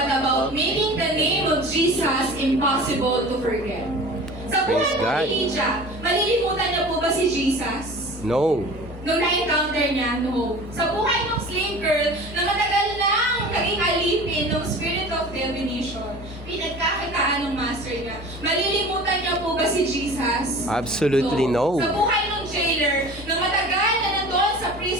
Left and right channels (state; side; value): normal; both; correlation 0.40